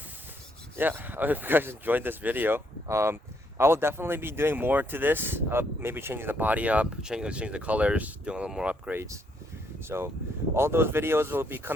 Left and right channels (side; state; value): both; normal; correlation 0.72